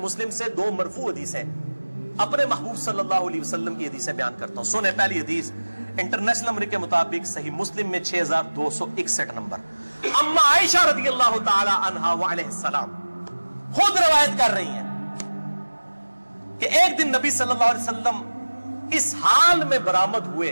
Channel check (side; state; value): both; inverted; correlation -1.00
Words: سے 2 مرفوع حدیثیں اپنے محبوب صلی اللہ علیہ وسلم کی حدیثیں بیان کرتا ہوں۔ سنیں پہلی حدیث انٹرنیشنل نمبر کے مطابق صحیح مسلم میں 6261 نمبر، اما عائشہ رضی اللہ تعالی عنہا وعلیہ السلام خود روایت کر رہی ہیں کہ ایک دن نبی صلی اللہ علیہ وسلم اس حال میں برآمد